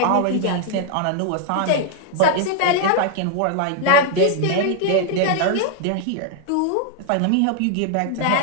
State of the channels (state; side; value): different; both; correlation 0.00